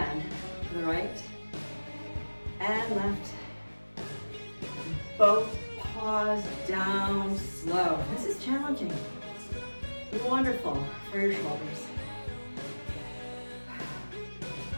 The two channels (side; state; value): both; inverted; correlation -1.00